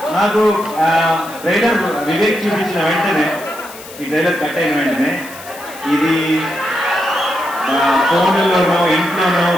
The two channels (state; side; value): noise; left; hiss, 17 dB below the sound